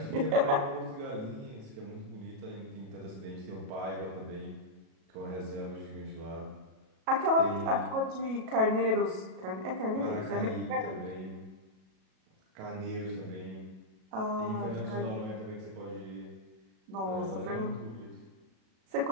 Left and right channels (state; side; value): late; left; 37 ms